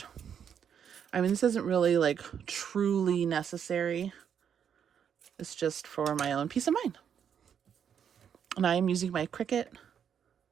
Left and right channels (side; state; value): left; quieter; 8.1 dB